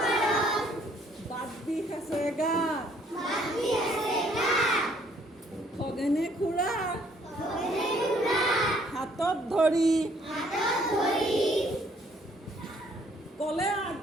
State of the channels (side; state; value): both; normal; correlation 0.64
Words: বাট বিষ আছে গাত খগেনে খুৰা হাতত ধৰি ক'লে